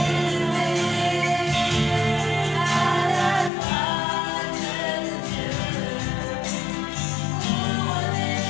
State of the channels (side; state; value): right; drops out; at 3.5 s